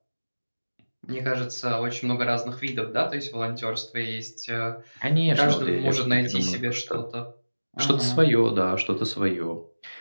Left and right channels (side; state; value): both; inverted; correlation -1.00